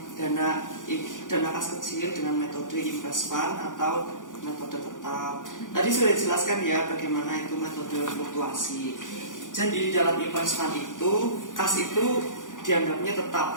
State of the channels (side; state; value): right; late; 0.88 ms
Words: dana kas kecil dengan metode invest fund atau metode tetap. Tadi sudah dijelaskan ya bagaimana itu metode fluktuasi. Jadi di dalam invest fund itu kas itu dianggapnya tetap